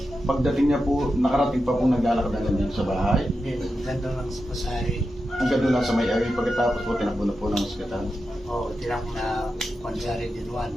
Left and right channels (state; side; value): normal; both; correlation 0.89